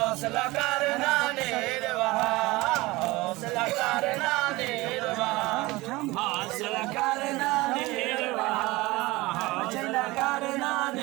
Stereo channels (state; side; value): quieter; left; 21.1 dB